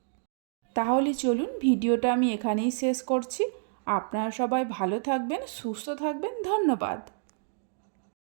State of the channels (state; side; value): silent; left; digital silence